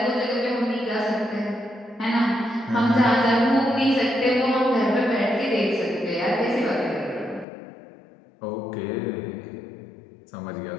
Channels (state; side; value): drops out; right; at 7.5 s